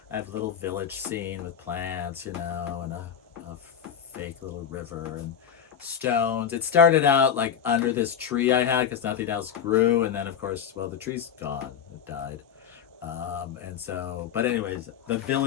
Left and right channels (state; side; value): quieter; right; 8.3 dB